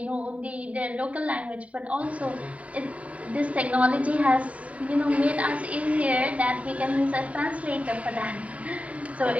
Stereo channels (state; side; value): late; left; 0.067 ms